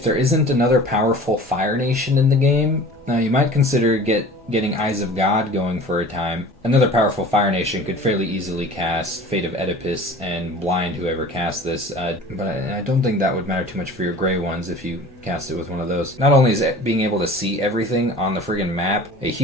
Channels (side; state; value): both; normal; correlation 0.42